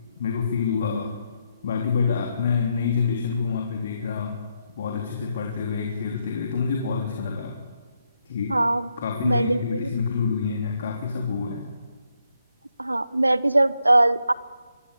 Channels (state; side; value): inverted; both; correlation -0.80